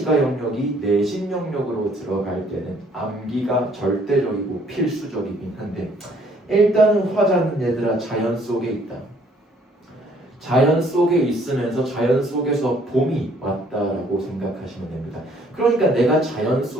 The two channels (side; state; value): both; normal; correlation 0.62